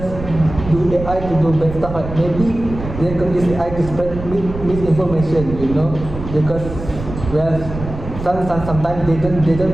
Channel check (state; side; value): noise; right; rumble, 9 dB below the sound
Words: do AI to do bad stuff. Like maybe they can use AI to spread misinformation, because sometimes they